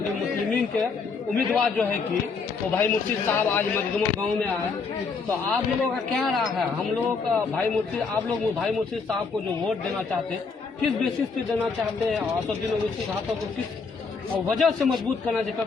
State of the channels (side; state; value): right; quieter; 4.8 dB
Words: मुस्लिमीन के उम्मीदवार जो है कि वो भाई मुर्शीद साहब आज मजलूमा गांव में आए, तो आप लोगों का क्या राय है? हम लोग आप लोग भाई मुर्शीद साहब को जो वोट देना चाहते हैं, किस बेसिस पे देना चाहते हैं? असदुद्दीन ओवैसी हाथों को किस वजह से मजबूत करना चाहिए?